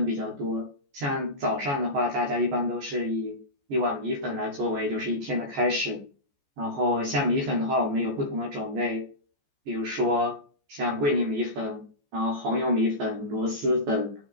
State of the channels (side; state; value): left; late; 14 ms